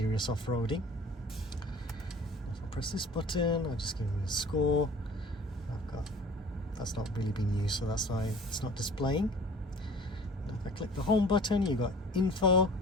off-roading. If I press this button, I'll just give me a score. That's not really been used, so that's why it's not displaying. And if I click the home button, you've got info,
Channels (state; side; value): normal; both; correlation 0.46